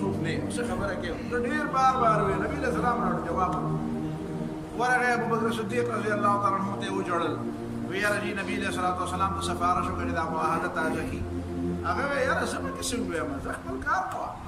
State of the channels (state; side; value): identical; both; correlation 1.00